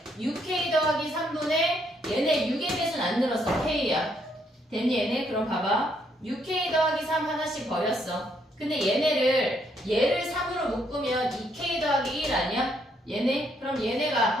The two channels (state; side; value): normal; both; correlation 0.72